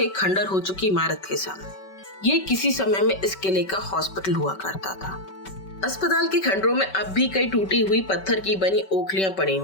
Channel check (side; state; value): right; late; 5.3 ms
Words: एक खंडर हो चुकी इमारत के सामने। ये किसी समय में इस किले का हॉस्पिटल हुआ करता था। अस्पताल के खंडरों में अब भी कई टूटी हुई पत्थर की बनी ओखलियां पड़ी